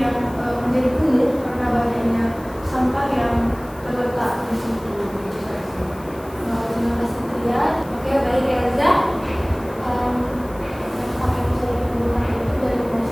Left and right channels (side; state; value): left; noise; hiss, 24 dB below the sound